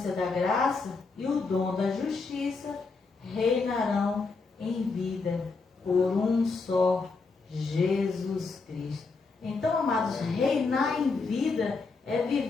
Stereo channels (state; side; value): quieter; right; 4.2 dB